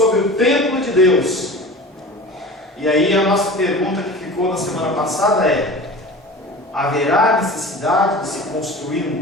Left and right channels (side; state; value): both; normal; correlation 0.36